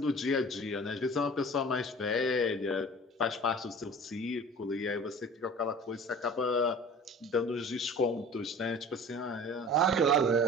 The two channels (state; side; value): normal; both; correlation 0.42